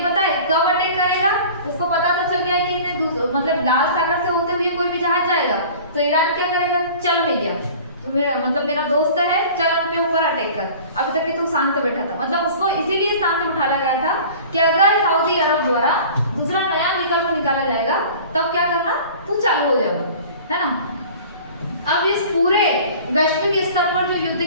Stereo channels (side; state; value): both; inverted; correlation -0.43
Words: पता है कब अटैक करेगा, उसको पता तो चल गया है कि इन्हें मतलब लाल सागर से होते हुए कोई भी जहाज जाएगा तो ईरान क्या करेगा, चल भैया तो मेरा दोस्त है, चल उनके ऊपर अटैक कर, अभी तक कि तू शांत बैठा था। मतलब उसको इसीलिए शांत बिठाया गया था कि अगर सऊदी अरब द्वारा दूसरा नया विकल्प निकाला जाएगा तब क्या करना, तू चालू हो जाएगा है ना। अब इस पूरे वैश्विक स्तर पर जो युद्ध